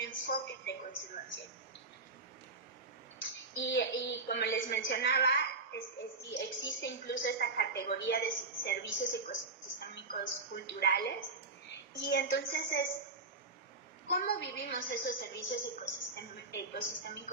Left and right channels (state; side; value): quieter; left; 3.7 dB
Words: de conservación. Y como les mencionaba, existe incluso esta categoría de servicios ecosistémicos culturales, y entonces es cómo vivimos esos servicios